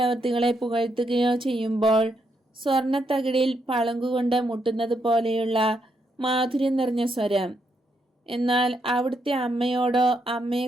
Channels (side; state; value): both; normal; correlation 0.78